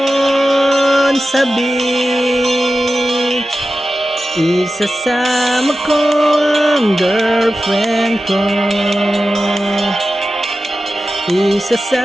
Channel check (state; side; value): normal; both; correlation 0.93